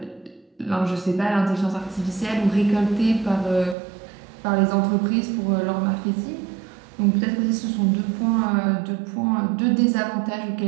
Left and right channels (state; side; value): drops out; left; at 3.8 s